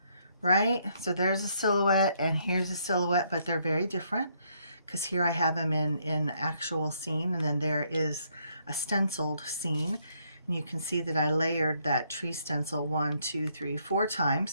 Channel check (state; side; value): inverted; both; correlation -0.71